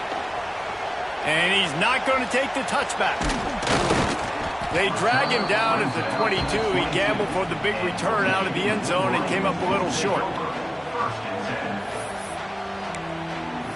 And he's not going to take the touchback. They drag him down at the 22. He gambled for the big return out of the end zone and came up a little short.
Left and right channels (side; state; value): both; identical; correlation 1.00